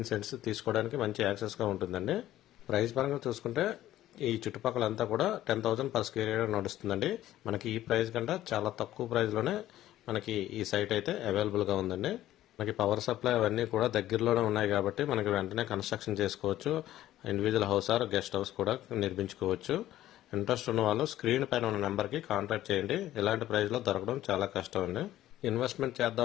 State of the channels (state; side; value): quieter; right; 13.8 dB